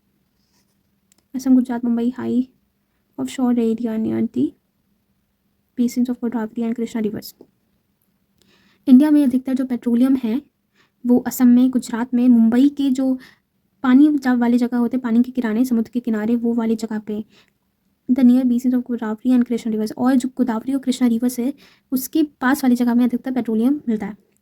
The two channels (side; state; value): both; identical; correlation 1.00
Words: Assam Gujarat Mumbai high offshore area near the basins of Godavari and Krishna rivers. India में अधिकतर जो पेट्रोलियम है वो असम में, गुजरात में, मुंबई के जो पानी वाले जगह होते हैं, पानी के किनारे, समुद्र के किनारे, वो वाली जगह पे, the near basins of Godavari and Krishna reverse, और जो गोदावरी और कृष्णा रिवर्स है उसके पास वाली जगह में अधिकतर पेट्रोलियम मिलता है।